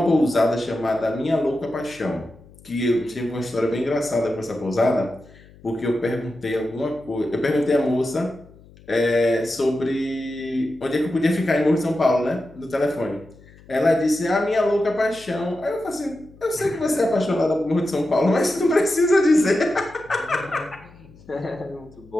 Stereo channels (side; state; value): left; noise; hum, 24 dB below the sound